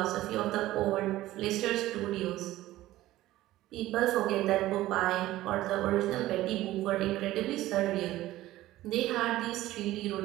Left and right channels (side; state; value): left; quieter; 15.8 dB